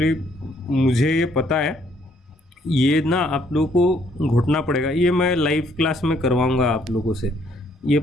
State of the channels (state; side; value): normal; both; correlation 0.67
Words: मुझे ये पता है, ये ना आप लोगों को घुटना पड़ेगा, ये मैं लाइव क्लास में करवाऊँगा आप लोगों से। ये